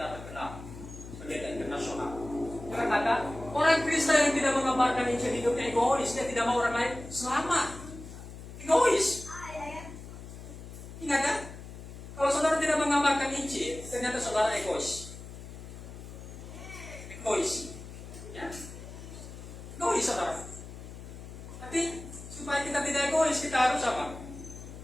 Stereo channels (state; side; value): noise; left; hum, 13 dB below the sound